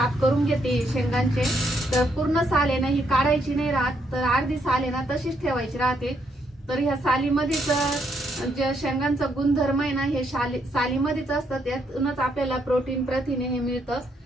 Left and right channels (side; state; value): both; normal; correlation 0.75